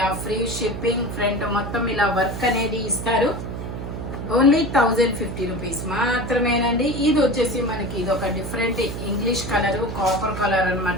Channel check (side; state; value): right; noise; hum, 6 dB below the sound